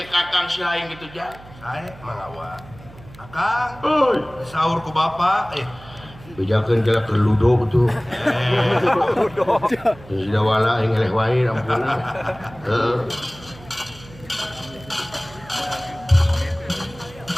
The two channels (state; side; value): noise; right; hum, 20 dB below the sound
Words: Kakang silaing kitu jang sae mangga Kakang euy saur ku Bapak bejakeun jalan keur ludo tuh ludo sudah wala yang eleh wae ampuna